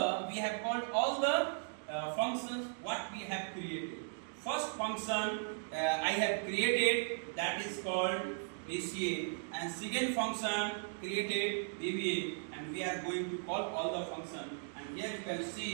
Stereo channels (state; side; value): silent; left; digital silence